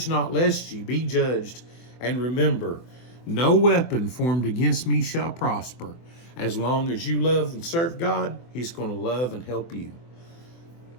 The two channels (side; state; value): right; late; 24 ms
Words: not lest ye be judged. And remember, no weapon formed against me shall prosper. As long as you love and serve God, he's going to love and help you.